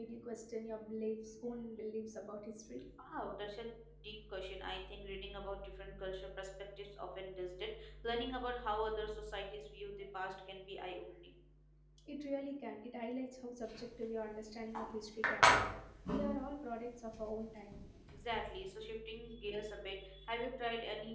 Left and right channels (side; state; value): both; identical; correlation 1.00